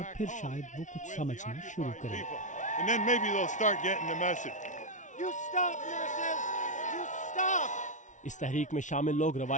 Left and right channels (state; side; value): late; right; 0.36 ms